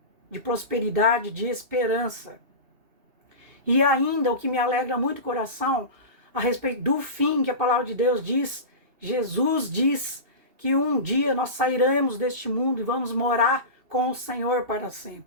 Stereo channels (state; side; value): late; left; 2.7 ms